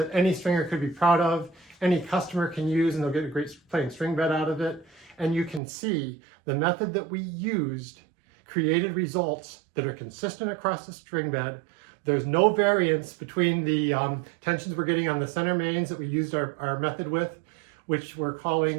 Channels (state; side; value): drops out; left; at 5.6 s